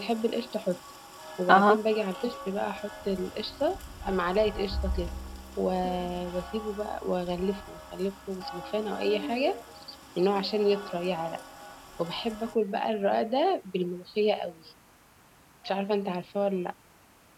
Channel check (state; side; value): identical; both; correlation 1.00